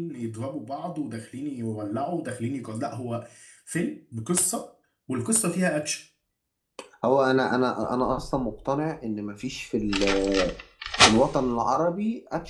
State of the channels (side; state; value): both; identical; correlation 1.00